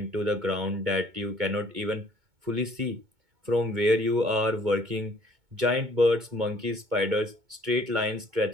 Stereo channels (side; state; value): left; late; 2.2 ms